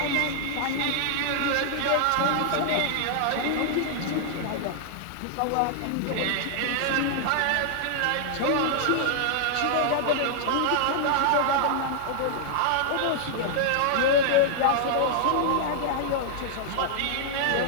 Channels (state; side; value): different; both; correlation -0.01